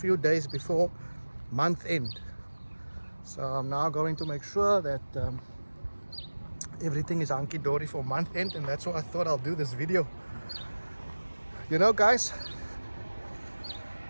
days before month end. So I'm now going to make sure that everything is hunky-dory for month end, and that's why I thought I'll do this video. You know guys,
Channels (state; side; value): inverted; both; correlation -1.00